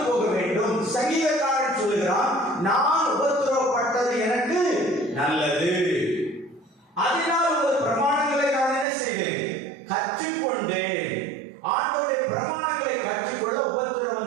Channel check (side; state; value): left; drops out; at 8.8 s